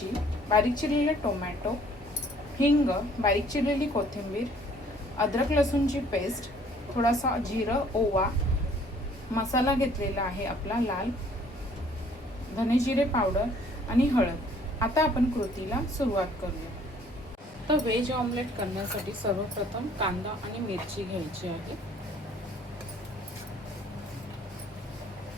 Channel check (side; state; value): both; normal; correlation 0.58